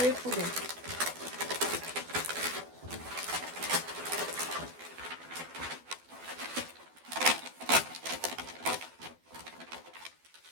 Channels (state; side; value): late; left; 12 ms